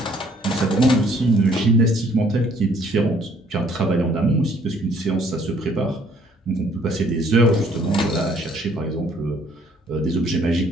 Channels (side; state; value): both; normal; correlation 0.61